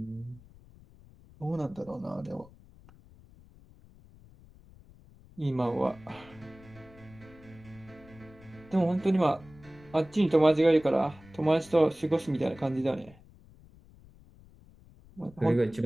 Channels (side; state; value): left; noise; rumble, 24 dB below the sound